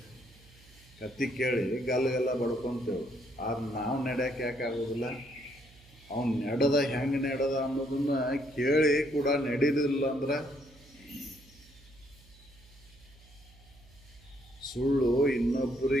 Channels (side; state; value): right; noise; hum, 25 dB below the sound